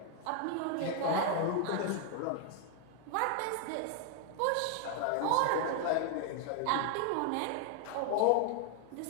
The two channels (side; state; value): both; different; correlation 0.00